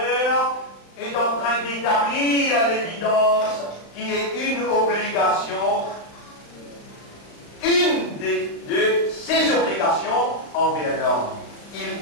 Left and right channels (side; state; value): right; late; 35 ms